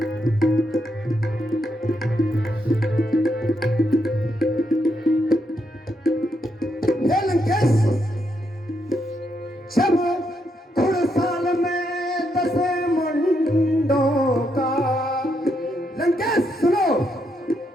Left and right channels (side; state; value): both; normal; correlation 0.79